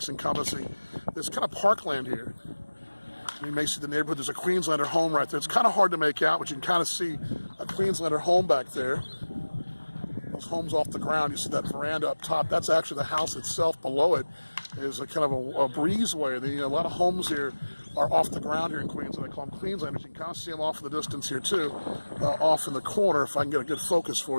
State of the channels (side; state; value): both; inverted; correlation -1.00